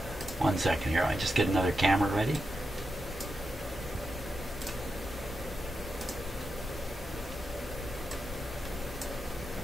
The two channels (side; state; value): both; normal; correlation 0.88